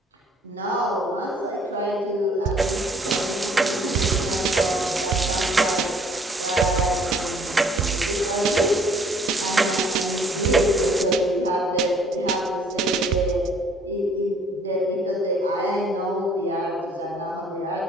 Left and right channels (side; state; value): both; normal; correlation 0.59